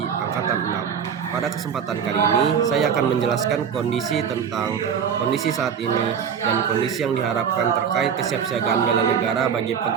6. Pada kesempatan kali ini, saya akan menjelaskan kondisi saat ini dan kondisi yang diharapkan terkait kesiapsiagaan bela negara bagi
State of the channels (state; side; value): quieter; left; 7.5 dB